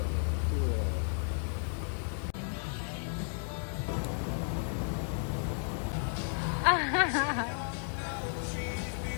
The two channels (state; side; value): silent; right; 55 dB below the other